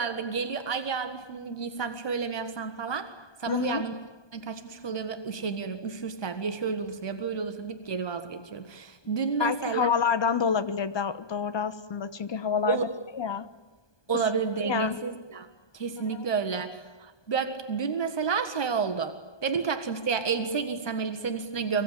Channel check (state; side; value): late; right; 1.2 ms